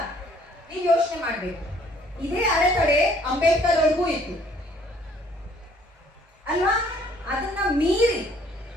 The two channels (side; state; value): both; normal; correlation 0.60